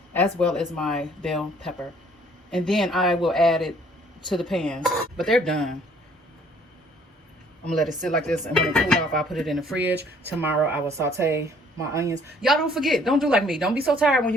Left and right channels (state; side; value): normal; both; correlation 0.59